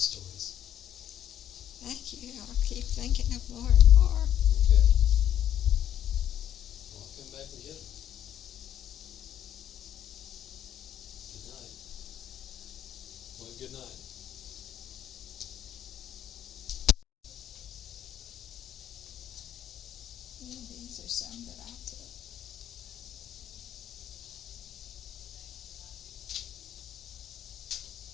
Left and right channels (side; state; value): right; quieter; 10.4 dB